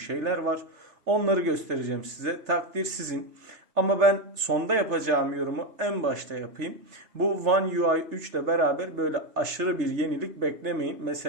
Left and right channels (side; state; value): left; late; 3.3 ms